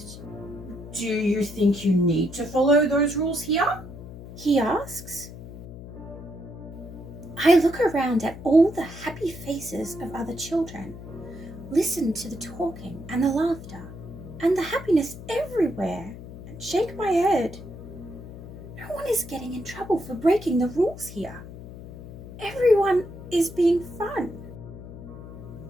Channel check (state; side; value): noise; left; hum, 13 dB below the sound